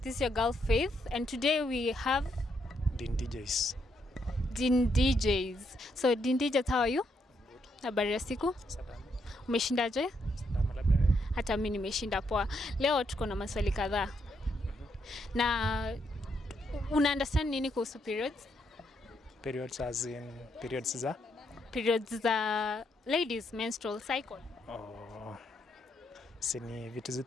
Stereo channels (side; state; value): both; normal; correlation 0.77